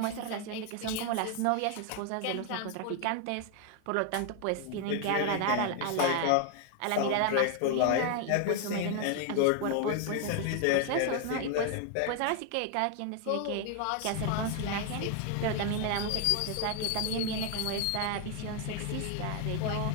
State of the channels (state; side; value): different; both; correlation 0.01